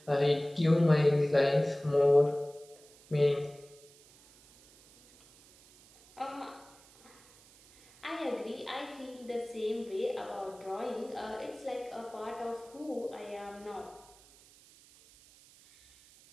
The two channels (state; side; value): noise; right; hiss, 25 dB below the sound